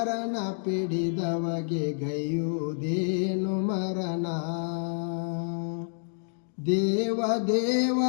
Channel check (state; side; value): silent; right; digital silence